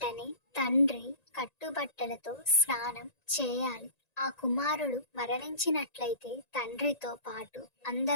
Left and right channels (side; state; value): right; late; 1.9 ms